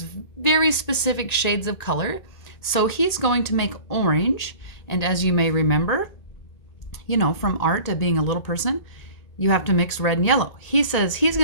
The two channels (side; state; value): right; late; 1.8 ms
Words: very specific shades of color, so he's going to make orange. And as you may remember, from art to being a little person, you have to mix red and yellow. He says he's